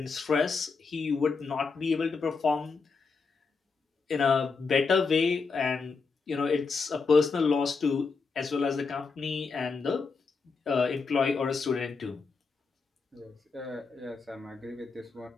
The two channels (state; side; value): quieter; right; 4.7 dB